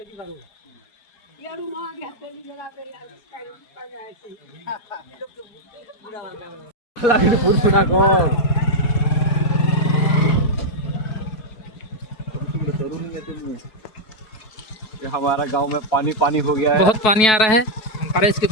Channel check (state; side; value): late; right; 4.6 ms